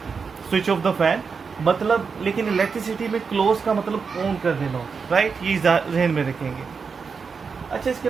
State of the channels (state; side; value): quieter; left; 5.4 dB